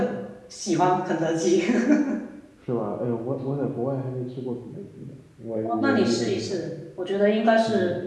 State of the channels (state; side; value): identical; both; correlation 1.00